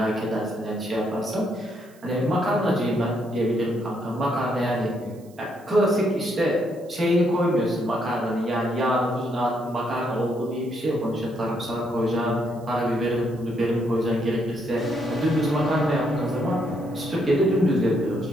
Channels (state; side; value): noise; right; hiss, 28 dB below the sound